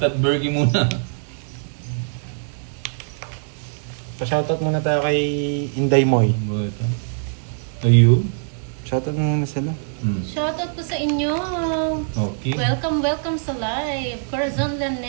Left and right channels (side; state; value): left; silent; digital silence